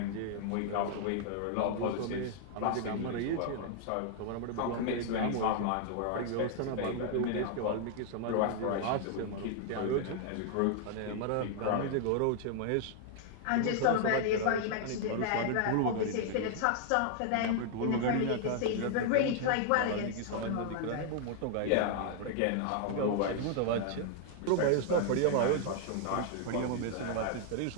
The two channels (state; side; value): different; both; correlation -0.01